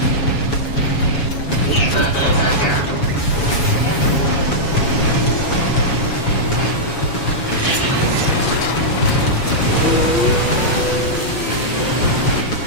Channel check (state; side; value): late; right; 7.2 ms